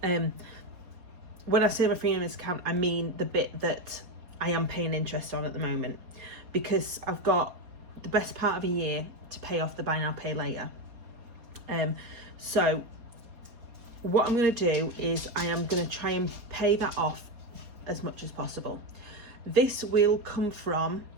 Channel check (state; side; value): late; left; 4.2 ms